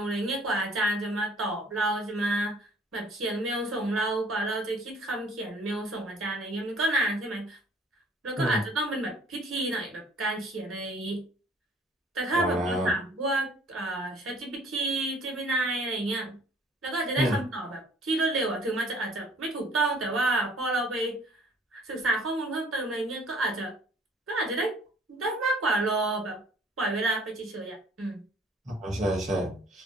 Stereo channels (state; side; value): normal; both; correlation 0.55